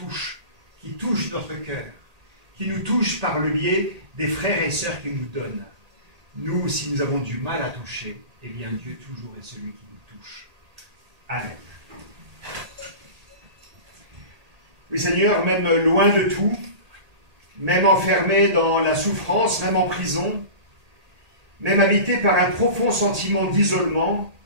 touche notre cœur, qui nous touche par le biais des frères et sœurs qu'il nous donne. Nous, si nous avons du mal à toucher, eh bien, Dieu toujours est celui qui nous touche. Amen. Oui, Seigneur, même loin de tout, même enfermé dans la souffrance, même en prison, même habité par un profond sentiment d'isolement,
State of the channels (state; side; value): late; left; 1.8 ms